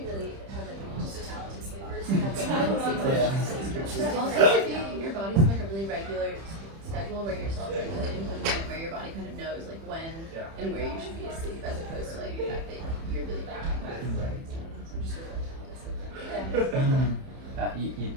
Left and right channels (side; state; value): left; late; 30 ms